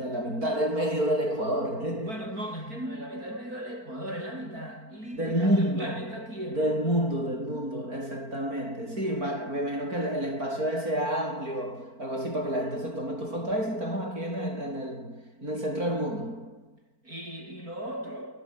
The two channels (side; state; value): left; late; 4.5 ms